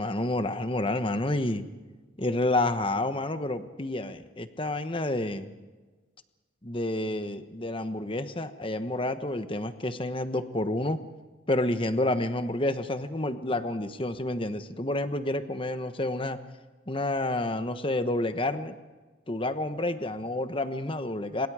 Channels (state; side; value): normal; both; correlation 0.51